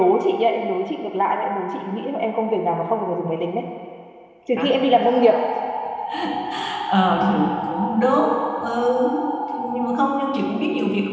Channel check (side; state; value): both; identical; correlation 1.00